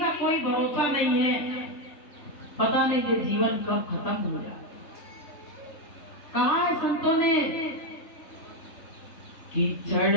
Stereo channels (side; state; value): right; late; 3.2 ms